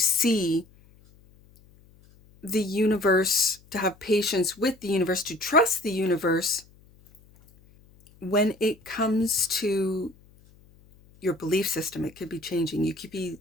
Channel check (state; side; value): noise; left; hum, 28 dB below the sound